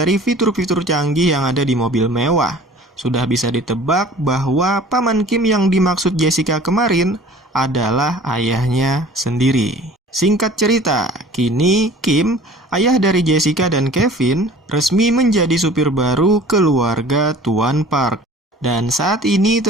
fitur-fitur canggih yang ada di mobil mewah. Sudah bisa ditebak bahwa Paman Kim yang dimaksud Jessica kemarin adalah ayahnya sendiri. Singkat cerita, kini Kim, ayah dari Jessica dan Kevin, resmi menjadi supir baru keluarga Tuan Park. Dan saat ini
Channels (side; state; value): both; normal; correlation 0.47